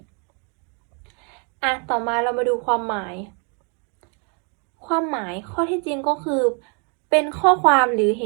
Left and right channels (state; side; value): quieter; left; 36.7 dB